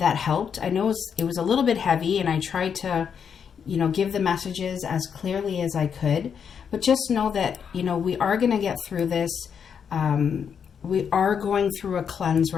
helped. I know it was a little bit heavy, and I tried to, give the messages as clearly as I could. But just know that, we are going to get through this. We are going through a cleanse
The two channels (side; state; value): right; quieter; 7.2 dB